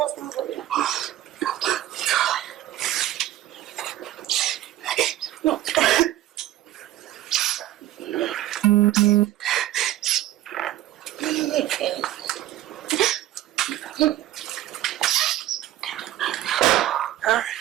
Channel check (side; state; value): left; quieter; 14.2 dB